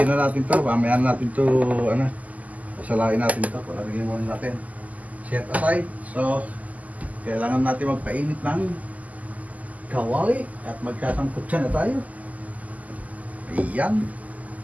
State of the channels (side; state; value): left; late; 0.076 ms